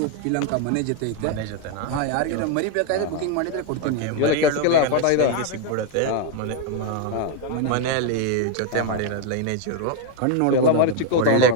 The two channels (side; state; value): both; different; correlation 0.01